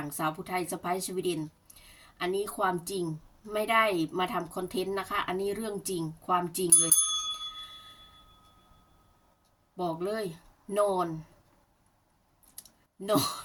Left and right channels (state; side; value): identical; both; correlation 1.00